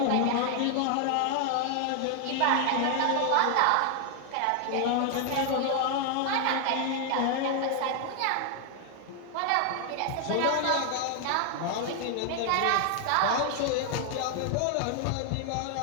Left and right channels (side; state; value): both; different; correlation 0.00